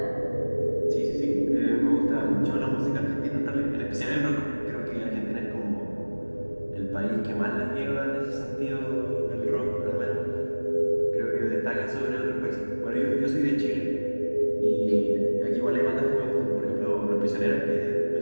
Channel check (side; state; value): both; inverted; correlation -1.00